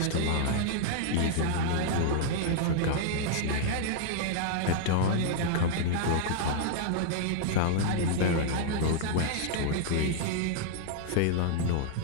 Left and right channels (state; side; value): different; both; correlation 0.00